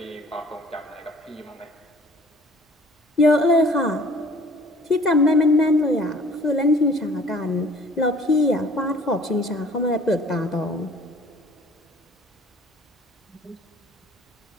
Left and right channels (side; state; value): both; normal; correlation 0.53